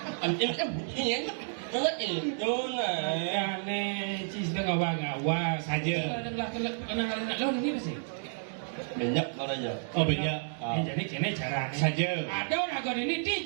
Ini kan bunyinya. Itu nah. Aneh, cis dah ngawa saja. Kenang lo ini apa sih? Banyak aja. Oh banyak. Jadi kene cara Saja. Ada orang ini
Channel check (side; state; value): left; silent; digital silence